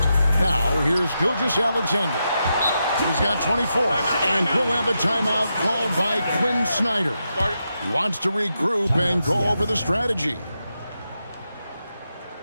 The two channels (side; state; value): both; inverted; correlation -0.86